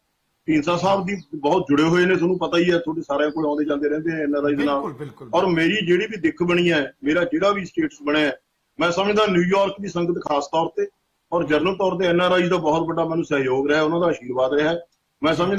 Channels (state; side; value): identical; both; correlation 1.00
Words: ਢੀਂਡਸਾ ਸਾਹਿਬ ਦੀ ਬਹੁਤ ਜੁੜੇ ਹੋਏ ਨੇ, ਤੁਹਾਨੂੰ ਪਤਾ ਹੀ ਹੈ, ਤੁਹਾਡੇ ਸਾਰਿਆਂ ਕੋਲ ਆਉਂਦੇ ਜਾਂਦੇ ਰਹਿੰਦੇ ਨੇ NRI ਦੇ ਨਾਲ। ਔਰ ਮੇਰੀ ਜਿਹੜੀ ਵੀ ਦਿੱਖ ਬਣੀ ਹੈ, ਮੇਰਾ ਜਿਹੜਾ ਵੀ ਸਟੇਟਸ ਬਣਿਆ, ਮੈਂ ਸਮਝਦਾ ਨਿਊਯਾਰਕ ਦੀ ਸੰਗਤ ਖਾਸ ਤੌਰ ਤੇ ਔਰ ਜਨਰਲ ਤੌਰ ਤੇ NRI ਦਾ ਬਹੁਤ ਵੱਡਾ ਮੈਨੂੰ ਸਹਿਯੋਗ ਰਿਹਾ, ਉਹਨਾਂ ਦਾ ਆਸ਼ੀਰਵਾਦ ਰਿਹਾ। ਮੈਂ